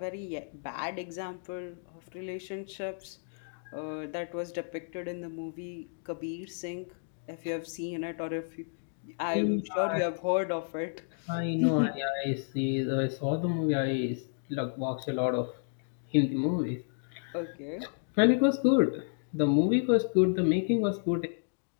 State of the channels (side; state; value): right; silent; digital silence